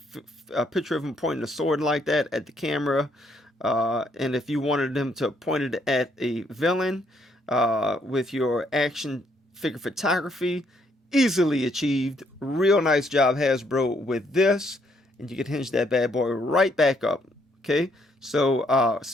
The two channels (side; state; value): both; normal; correlation 0.71